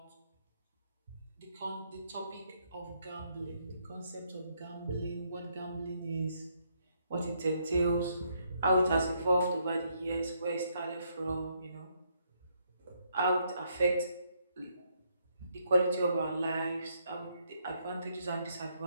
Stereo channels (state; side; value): inverted; both; correlation -0.73